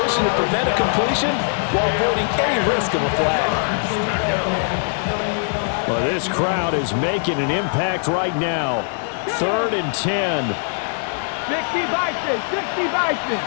to prevent a completion while avoiding any risk of a flag. Well, this crowd is making an impact right now. 3rd and 10. 60 Bison. 60 Bison.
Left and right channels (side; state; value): right; silent; digital silence